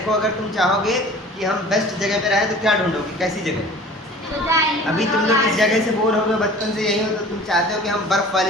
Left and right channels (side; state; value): both; normal; correlation 0.44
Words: अगर तुम चाहोगे कि हम बेस्ट जगह पे रहें तो क्या ढूंढोगे, कैसी जगह। अभी तुम लोग इस जगह से बोर हो गए, बचपन से यही हो, तो तुम चाहते हो कि हम बर्फ